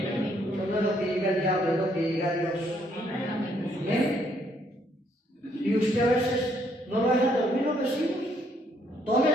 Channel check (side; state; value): both; normal; correlation 0.69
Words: no es lo que diga el diablo, es lo que diga Dios. ¿Bien? Y usted a veces no lo deja dormir los vecinos. Tome